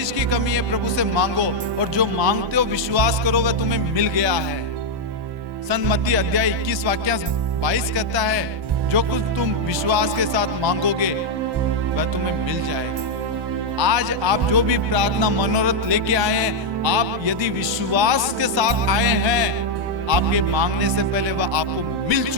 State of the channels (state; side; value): late; left; 1.2 ms